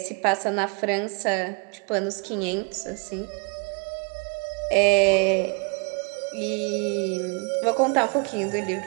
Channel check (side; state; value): left; quieter; 35.4 dB